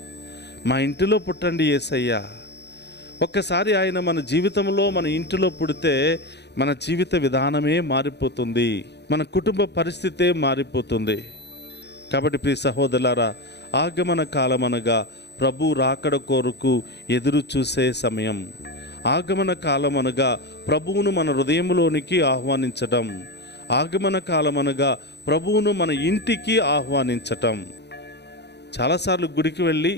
మా ఇంటిలో పుట్టండి యేసయ్యా. ఒక్కసారి ఆయన మన జీవితంలో, మన ఇంటిలో పుడితే మన జీవిత విధానమే మారిపోతుంది, మన కుటుంబ పరిస్థితే మారిపోతుంది. కాబట్టి ప్రియ సహోదరులారా, ఆగమన కాలం అనగా ప్రభు రాకడ కొరకు ఎదురు చూసే సమయం. ఆగమన కాలం అనగా ప్రభువును మన హృదయంలోనికి ఆహ్వానించటం. ఆగమన కాలం అనగా ప్రభువును మన ఇంటికి ఆహ్వానించటం. చాలాసార్లు గుడికి వెళ్ళి,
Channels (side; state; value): right; late; 0.49 ms